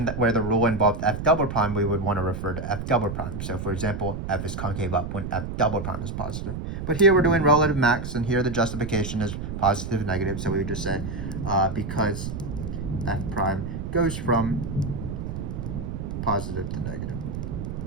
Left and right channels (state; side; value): noise; right; rumble, 5 dB below the sound